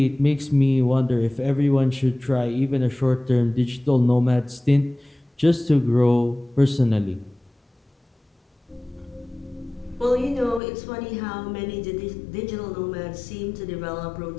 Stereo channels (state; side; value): drops out; right; at 10.6 s